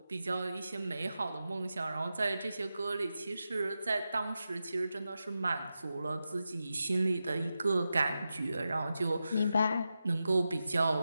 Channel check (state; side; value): inverted; both; correlation -0.90